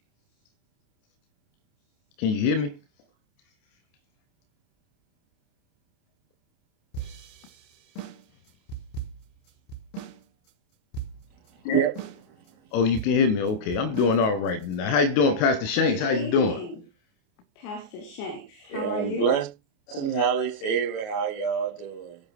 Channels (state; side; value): late; right; 28 ms